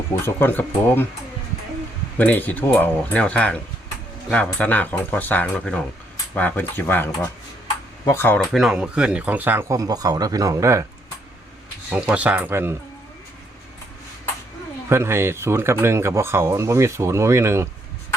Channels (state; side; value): normal; both; correlation 0.73